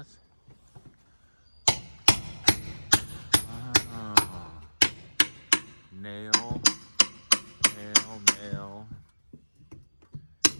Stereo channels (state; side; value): inverted; both; correlation -1.00